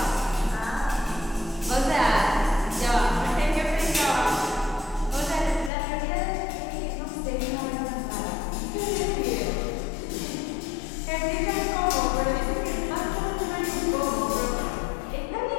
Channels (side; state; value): right; drops out; at 5.7 s